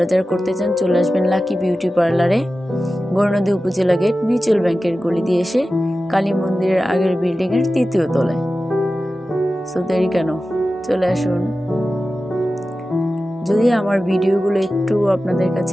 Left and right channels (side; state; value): both; normal; correlation 0.94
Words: যারা করতে চান চলে আসবেন লাকি বিউটি পার্লারে, বর্ণদী উপজেলা গেট, মিউচুয়াল ব্যাংকের গলি দিয়ে এসে কালী মন্দিরের আগের বিল্ডিংয়ের 3য় তলায়। সো দেরি কেন, চলে আসুন। যদি আমার ভিডিওগুলো একটু আপনাদের